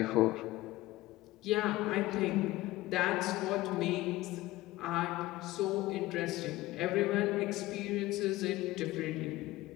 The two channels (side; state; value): right; quieter; 18.0 dB